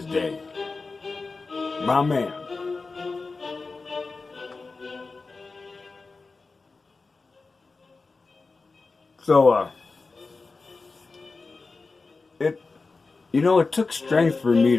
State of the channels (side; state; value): right; quieter; 4.0 dB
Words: day. My man. So, it took strength for me